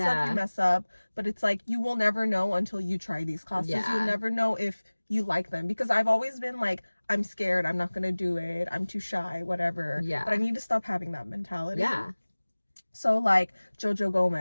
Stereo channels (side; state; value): both; inverted; correlation -1.00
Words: you mess up. But it's like, you will never know until you try these classes. You'll never know if you like them, because I've always been like, I'm scared, I'm not gonna do it, I'm too shy, whatever. But I need to stop having that mentality. So like Jojo